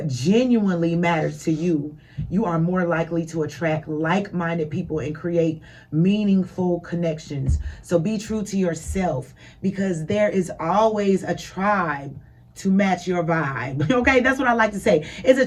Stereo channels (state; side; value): identical; both; correlation 1.00